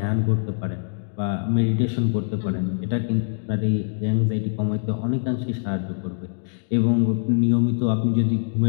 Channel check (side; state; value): right; silent; digital silence